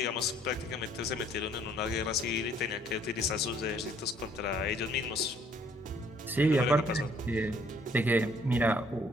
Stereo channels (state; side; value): normal; both; correlation 0.62